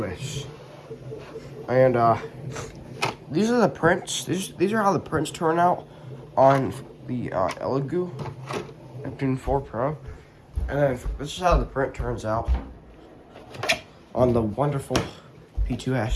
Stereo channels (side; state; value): both; identical; correlation 1.00